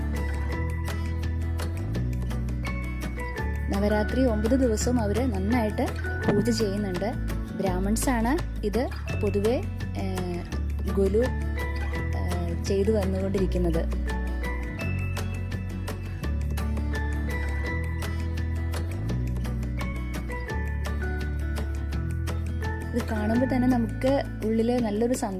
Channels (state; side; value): identical; both; correlation 1.00